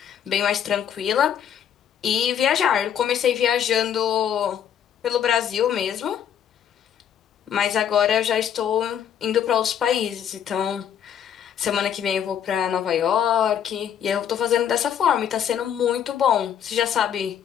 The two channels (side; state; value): right; quieter; 9.0 dB